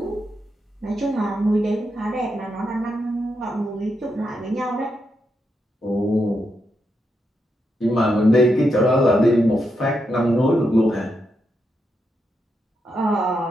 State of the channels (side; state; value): both; normal; correlation 0.83